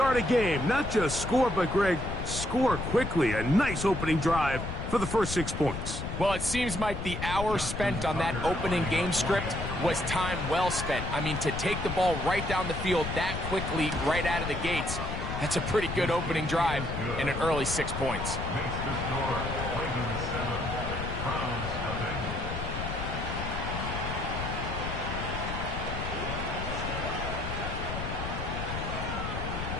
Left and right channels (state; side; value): noise; left; rumble, 5 dB below the sound